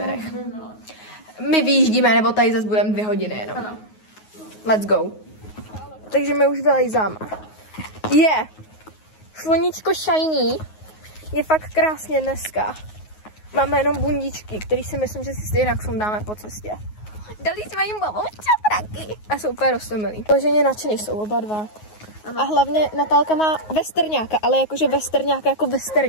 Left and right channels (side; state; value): right; late; 9.5 ms